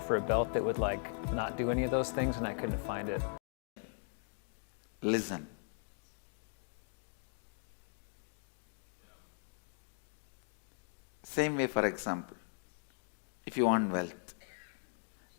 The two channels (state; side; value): silent; right; 52 dB below the other